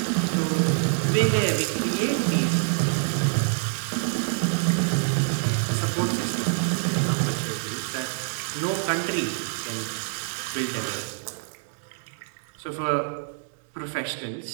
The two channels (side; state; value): left; silent; digital silence